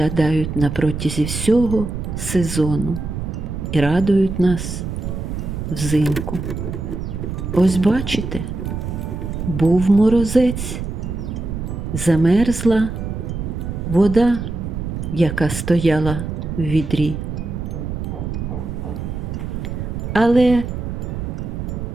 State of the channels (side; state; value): right; noise; rumble, 5 dB below the sound